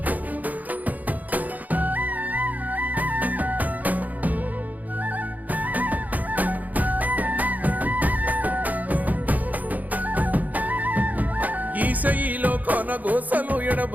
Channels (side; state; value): left; late; 0.079 ms